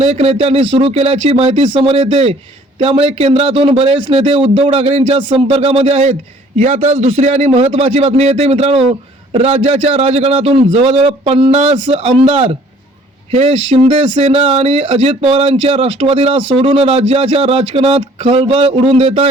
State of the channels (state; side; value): normal; both; correlation 0.56